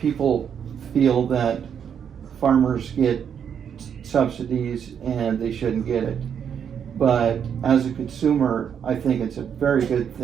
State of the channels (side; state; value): left; quieter; 8.0 dB